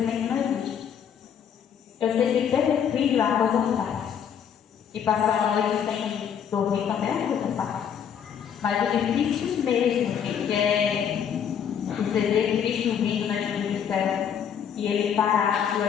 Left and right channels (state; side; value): quieter; right; 8.2 dB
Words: não existe. Eu sei que ter filho é uma coisa fácil. E passar a noite sem dormir também é uma coisa fácil. Mas o difícil mesmo, gente, é você ver Cristo vindo na vida do céu e ele parar e